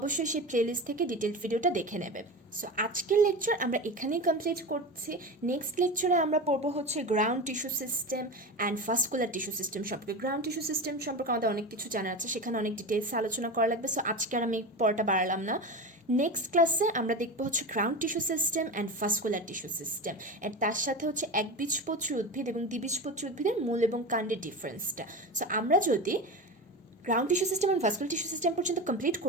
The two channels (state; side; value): normal; both; correlation 0.25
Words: সেই প্লেলিস্ট থেকে ডিটেলড ভিডিওটা দেখে নেবে। সো আজকের লেকচার আমরা এখানেই কমপ্লিট করছি। নেক্সট লেকচারে আমরা পড়বো হচ্ছে ground tissue system and vascular tissue system সম্পর্কে। গ্রাউন্ড টিস্যু সিস্টেম সম্পর্কে আমাদের অনেক কিছু জানা আছে, সেখানে অনেক ডিটেলস আলোচনা করা লাগবে, সো আজকে আর আমি পড়াটা বাড়ালাম না। নেক্সট ক্লাসে আমরা দেখবো হচ্ছে ground tissue system and vascular tissue system, and তার সাথে হচ্ছে একবীজপত্রী উদ্ভিদ এবং দ্বিবীজপত্রী উদ্ভিদের মূল এবং কাণ্ডের ডিফারেন্সটা। সো আমরা যদি গ্রাউন্ড টিস্যু সিস্টেম এবং ভাস্কুলার টিস্যু সিস্টেম পর্যন্ত কমপ্লিট